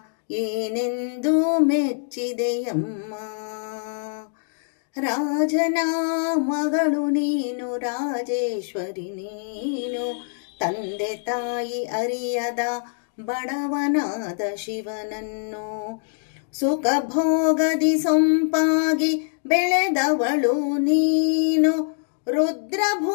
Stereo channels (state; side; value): silent; right; digital silence